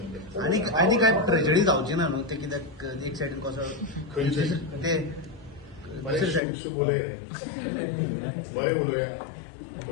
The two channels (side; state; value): right; drops out; at 6.4 s